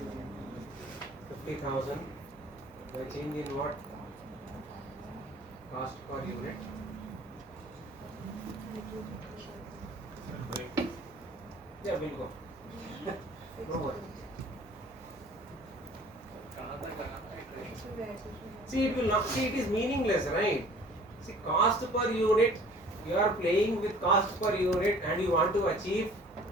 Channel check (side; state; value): both; normal; correlation 0.50